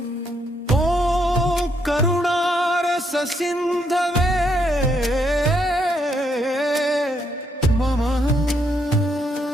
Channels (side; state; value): both; normal; correlation 0.75